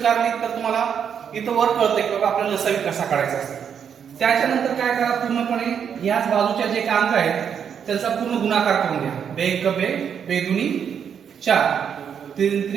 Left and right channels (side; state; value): left; quieter; 7.7 dB